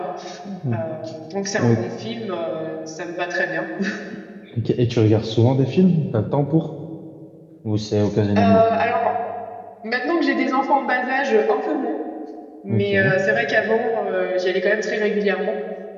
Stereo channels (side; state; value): both; identical; correlation 1.00